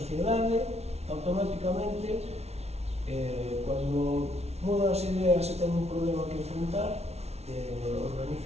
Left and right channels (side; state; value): left; late; 0.31 ms